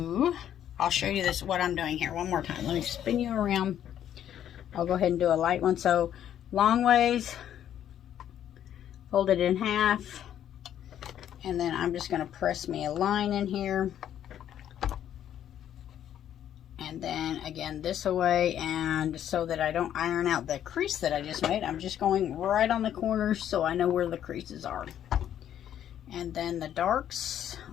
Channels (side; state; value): right; quieter; 10.5 dB